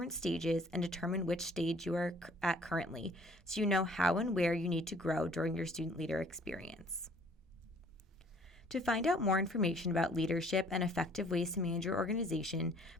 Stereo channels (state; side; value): normal; both; correlation 0.57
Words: stages, and determine which stage you are at currently, so you know how and where you need to grow during your student leader experience. To find out more information about leadership and effective ways to manage your organization,